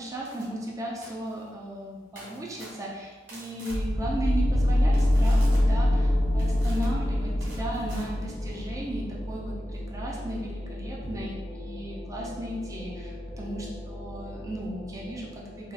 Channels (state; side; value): normal; both; correlation 0.92